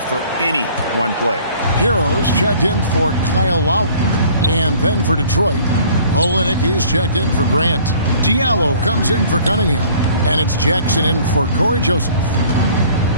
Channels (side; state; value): both; inverted; correlation -0.53